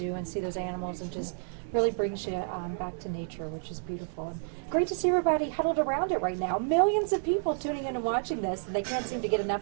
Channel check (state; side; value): silent; left; digital silence